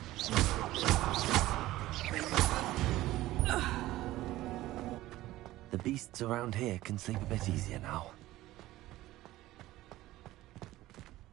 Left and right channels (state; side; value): quieter; left; 16.4 dB